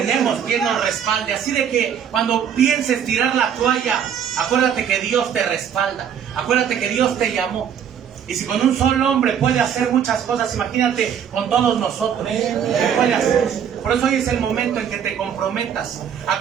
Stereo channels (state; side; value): quieter; left; 8.4 dB